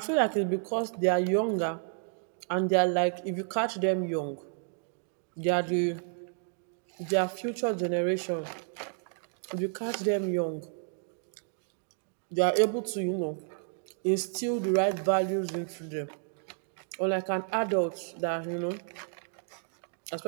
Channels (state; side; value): silent; left; 57 dB below the other